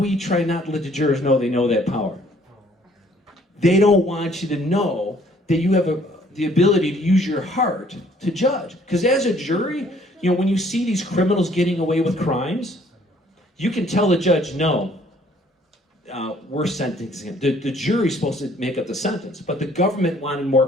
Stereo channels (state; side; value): normal; both; correlation 0.61